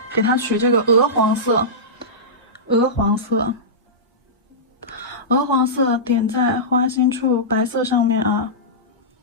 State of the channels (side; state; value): both; normal; correlation -0.15